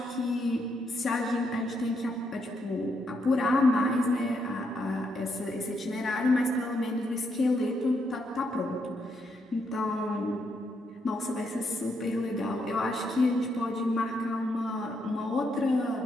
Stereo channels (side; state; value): both; normal; correlation 0.78